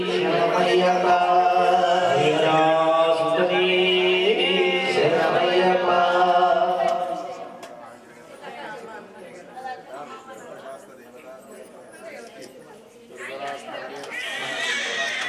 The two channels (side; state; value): both; identical; correlation 1.00